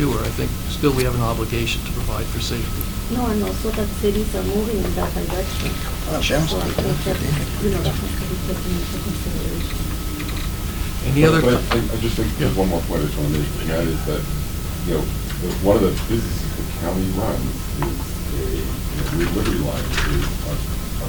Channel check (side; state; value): both; identical; correlation 1.00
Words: I think still we have an obligation to provide for safety. No, and also that cities are moving in that direction. So I think that, that has to be taken into consideration. Any other? But I just think there's one more point I just want to make, and that is that, one of the businesses the county runs is Liberty Line is